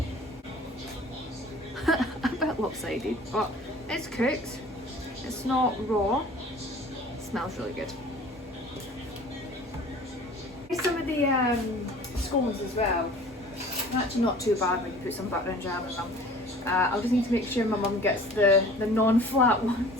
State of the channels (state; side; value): normal; both; correlation 0.46